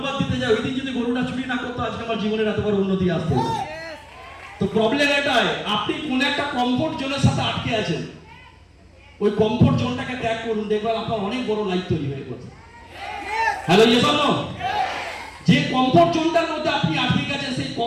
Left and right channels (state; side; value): identical; both; correlation 1.00